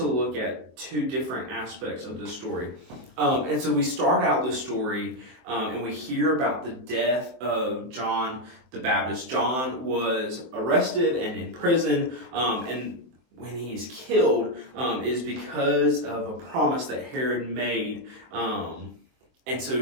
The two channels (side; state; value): left; late; 23 ms